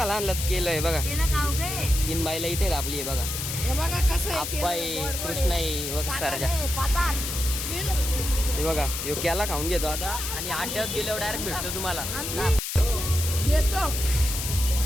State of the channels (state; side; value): noise; left; hiss, 4 dB below the sound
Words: आणल्यात. केलं आहे बघा. 3 बाईला इथे आपली आहे बघा. आप्पा आहे, कृष्णा आहे बघा, सरजा. हे बघा, यो केला खाऊन घेतो आता. आणि 8 दिवस गेल्यावर डायरेक्ट भेटतो तुम्हाला.